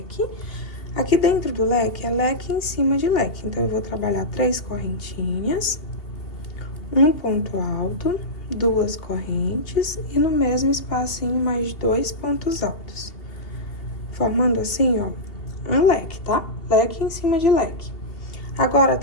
Aqui dentro do leque é leque em cima de leque. Então, eu vou trabalhar 3 correntinhas, um ponto alto, 2 correntes e no mesmo espacinho mais 2 pontos altos. Formando assim, ó, um leque, tá? Leque em cima de leque. Agora,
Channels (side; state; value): right; late; 2.8 ms